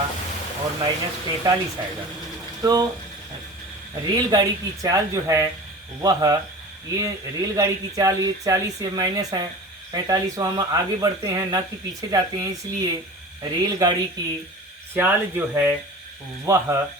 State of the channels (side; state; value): both; normal; correlation 0.37